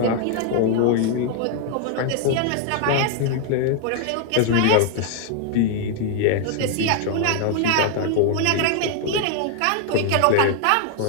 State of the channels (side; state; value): both; different; correlation 0.00